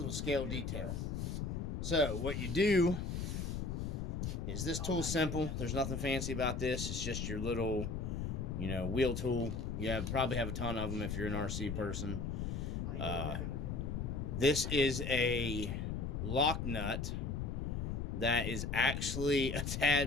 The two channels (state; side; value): noise; left; rumble, 2 dB below the sound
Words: scale detail. So what you do is, this tool's simple. There's nothing fancy about this. It's just your little, wheel tool. You probably have a ton of them if you're an RC person. This is a lock nut that is actually a